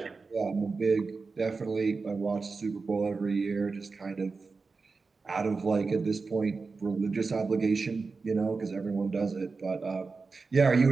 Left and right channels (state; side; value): quieter; left; 4.3 dB